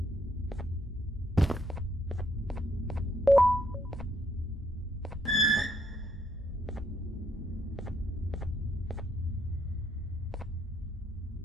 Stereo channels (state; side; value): normal; both; correlation 0.73